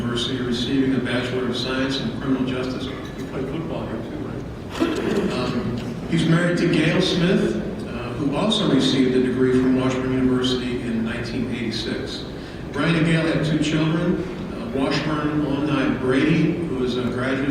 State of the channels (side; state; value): both; identical; correlation 1.00